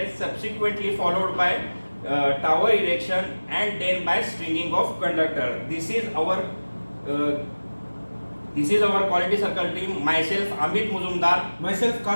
subsequently followed by tower erection and then by stringing of conductor. This is our quality circle team. Myself Amit Muzumdar, myself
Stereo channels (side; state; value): both; inverted; correlation -1.00